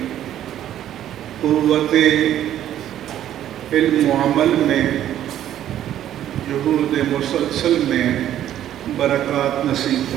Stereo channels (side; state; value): left; quieter; 11.5 dB